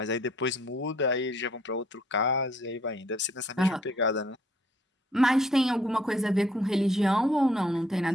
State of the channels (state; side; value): normal; both; correlation 0.63